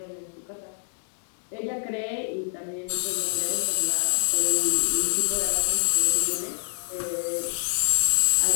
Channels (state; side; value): silent; right; digital silence